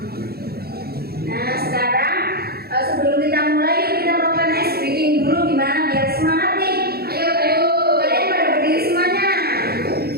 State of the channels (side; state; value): left; late; 0.45 ms